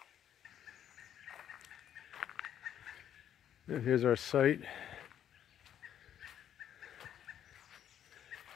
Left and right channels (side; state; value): right; quieter; 9.9 dB